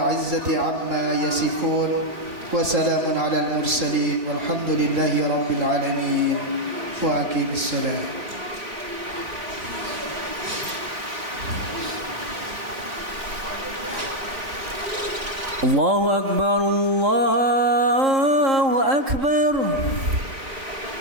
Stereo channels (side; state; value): left; late; 3.8 ms